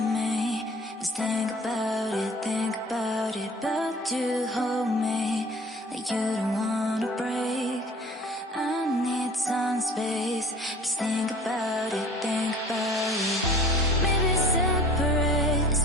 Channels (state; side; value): normal; both; correlation 0.46